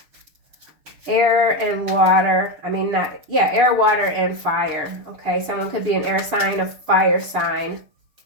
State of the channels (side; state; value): left; late; 6.7 ms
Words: Air and water. Air, water, and fire. Okay, someone could be an air sign, a fire sign.